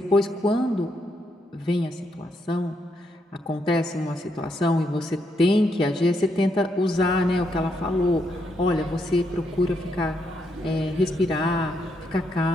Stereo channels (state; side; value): normal; both; correlation 0.78